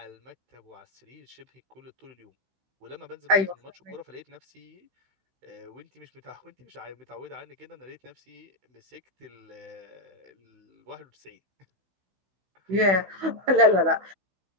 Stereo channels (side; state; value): left; late; 16 ms